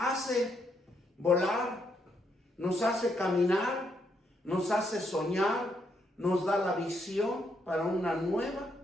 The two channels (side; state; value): both; normal; correlation 0.76